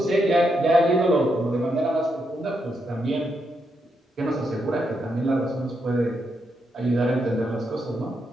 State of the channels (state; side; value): normal; both; correlation 0.81